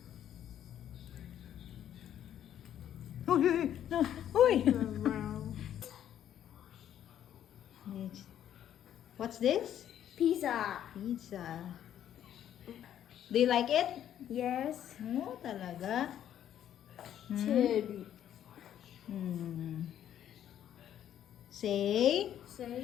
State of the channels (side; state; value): right; quieter; 10.6 dB